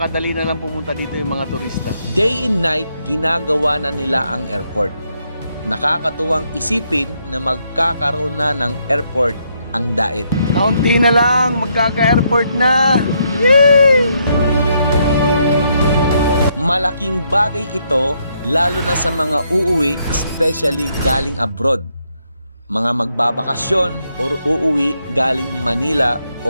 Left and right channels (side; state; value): both; inverted; correlation -0.75